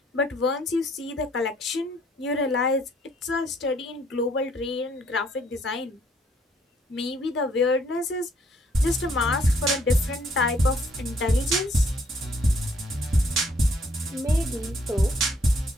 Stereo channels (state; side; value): normal; both; correlation 0.66